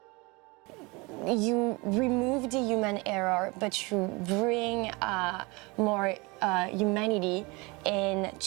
You remove the human error, but you bring more humanity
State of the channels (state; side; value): quieter; left; 26.2 dB